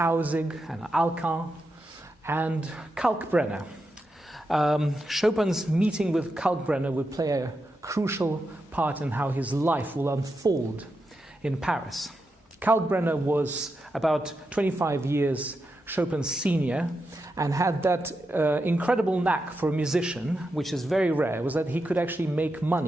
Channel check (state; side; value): normal; both; correlation 0.87